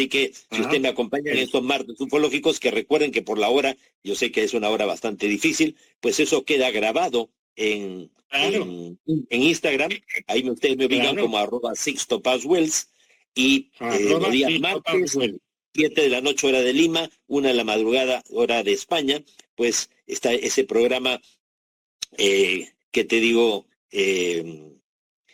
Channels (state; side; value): identical; both; correlation 1.00